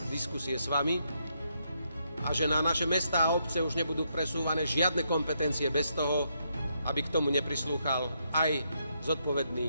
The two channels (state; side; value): inverted; both; correlation -0.78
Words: diskusie s vami a že na naše mestá a obce už nebudú presúvané žiadne kompetencie bez toho, aby k tomu neprislúchal aj